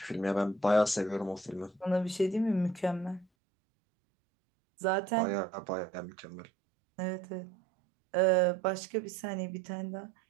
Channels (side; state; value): left; drops out; at 3.2 s